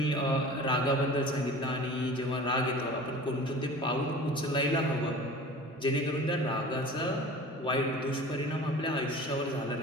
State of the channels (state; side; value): normal; both; correlation 0.40